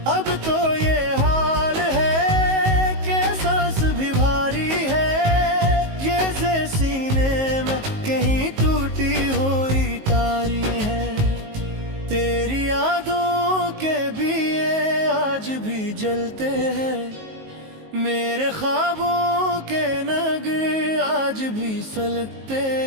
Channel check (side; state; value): left; late; 19 ms